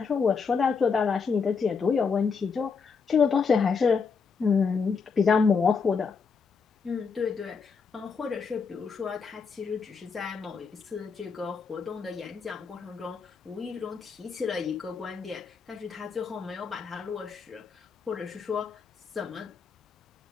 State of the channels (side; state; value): right; quieter; 5.5 dB